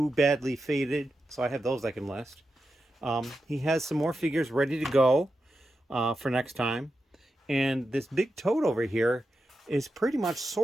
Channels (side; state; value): both; normal; correlation 0.89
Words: badly faded. So I have those I can list. He has some more figures ready to go for next time. And this big tote over here is pretty much